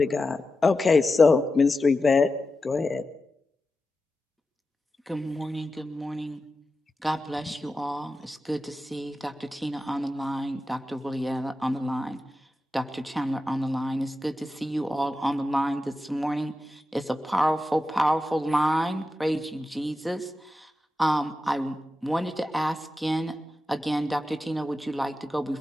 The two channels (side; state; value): both; normal; correlation 0.91